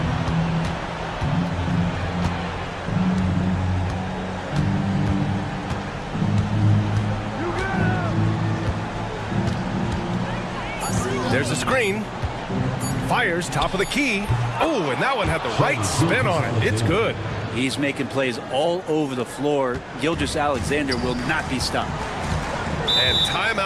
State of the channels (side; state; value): both; identical; correlation 1.00